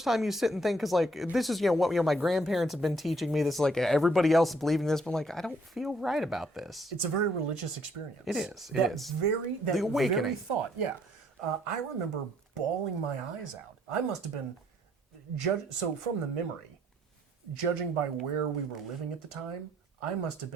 time you sit and think, because like this is what my grandparents have been teaching me. This is like everybody else is believing this, but like I don't feel right about this. It's a very religious experience. It is. The awakening. Very thought. Yeah, I remember bawling my eyes out. I must have been so from the memory, judging by where we were living at the time, I must have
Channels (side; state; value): both; normal; correlation 0.66